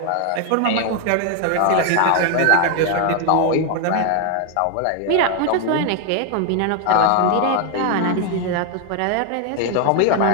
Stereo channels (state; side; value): different; both; correlation 0.00